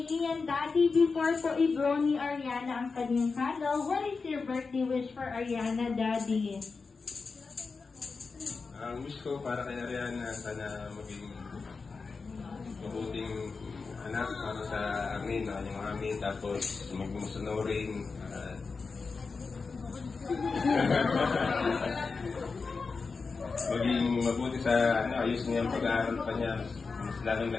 Ian, Daddy, before po i-blow ni Ariana ang kanyang candle, what is your birthday wish for Ariana, Daddy? Ang wish ko para kay Ariana, sana maging mabuting anak para sa amin, yung amin, tapos magmumusunurin. Maging mabuti sa ayos niya ang pag-aaral pa niya, mas lalong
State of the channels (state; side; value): quieter; right; 4.6 dB